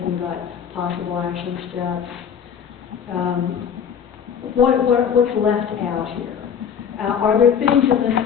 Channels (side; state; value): right; quieter; 7.6 dB